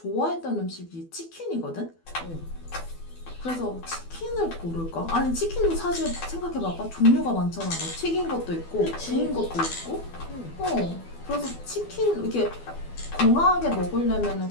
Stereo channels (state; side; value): late; right; 12 ms